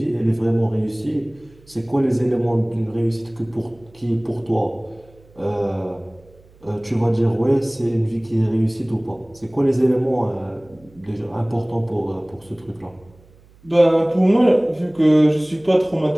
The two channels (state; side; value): noise; right; hum, 28 dB below the sound